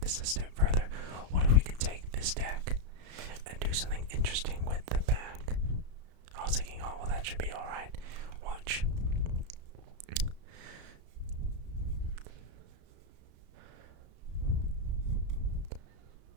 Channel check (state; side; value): late; left; 34 ms